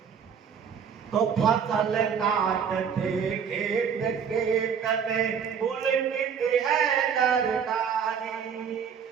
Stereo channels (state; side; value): quieter; left; 7.1 dB